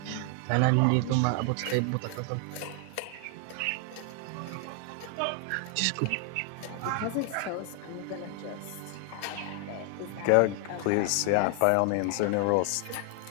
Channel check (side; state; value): both; different; correlation 0.00